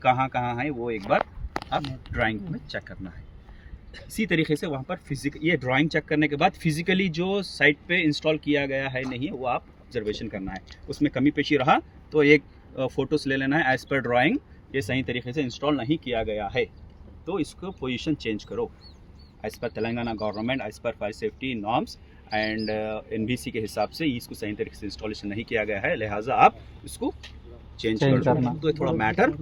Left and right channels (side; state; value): both; identical; correlation 1.00